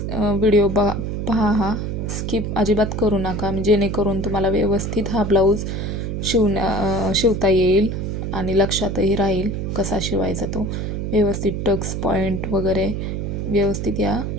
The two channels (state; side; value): noise; right; hum, 3 dB below the sound